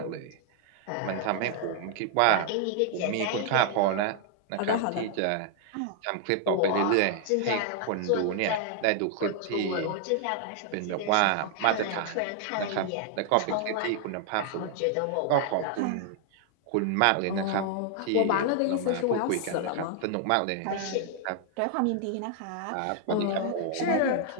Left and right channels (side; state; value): both; different; correlation 0.00